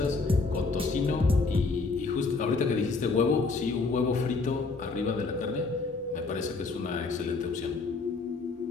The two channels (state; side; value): quieter; right; 4.0 dB